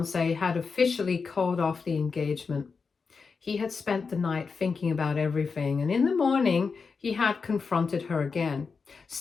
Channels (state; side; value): quieter; right; 5.0 dB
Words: had officially called off the engagement. He had spent the night thinking about everything, and in the morning he had confronted her again.